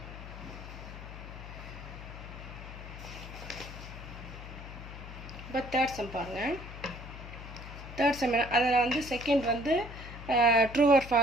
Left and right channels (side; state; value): left; noise; hum, 12 dB below the sound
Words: இப்போ தேர்ட் சம் பாருங்கள். தேர்ட் சம் அதில் வந்து செகண்ட் வந்து ட்ரூ ஆர்